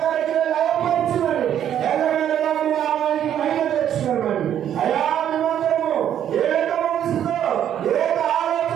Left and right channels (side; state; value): left; quieter; 10.1 dB